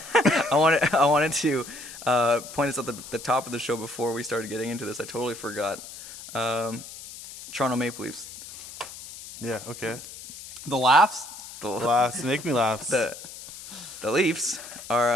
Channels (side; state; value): left; noise; hiss, 14 dB below the sound